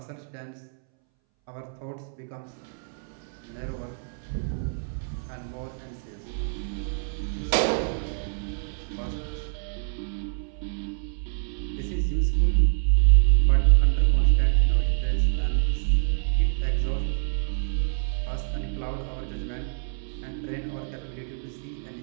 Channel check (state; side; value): silent; left; 61 dB below the other